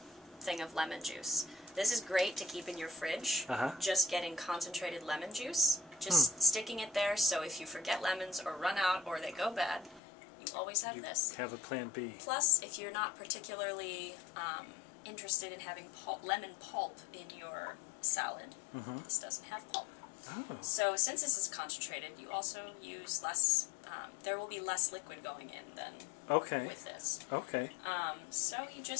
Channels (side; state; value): right; drops out; at 10.0 s